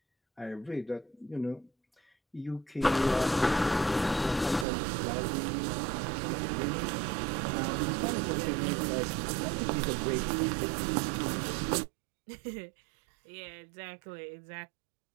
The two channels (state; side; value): drops out; left; at 4.7 s